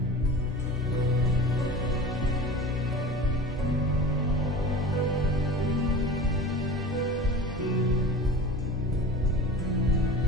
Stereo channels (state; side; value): normal; both; correlation 0.35